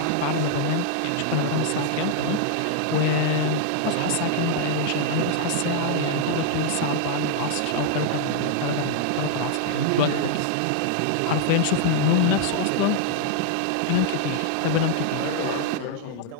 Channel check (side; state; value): both; different; correlation 0.00